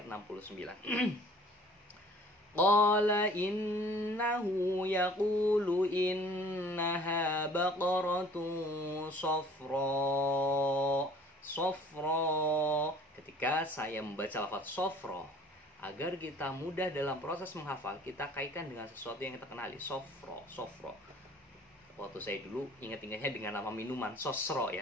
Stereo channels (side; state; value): both; normal; correlation 0.52